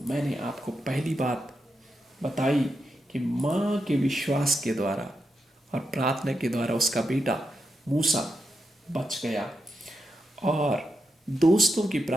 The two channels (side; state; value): both; normal; correlation 0.85